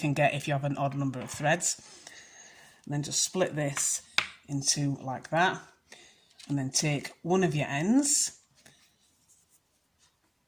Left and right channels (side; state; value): both; identical; correlation 1.00